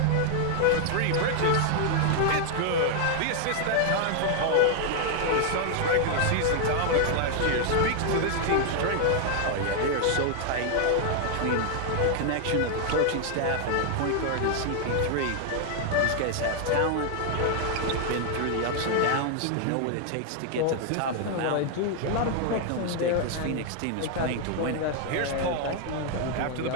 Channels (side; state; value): both; different; correlation 0.00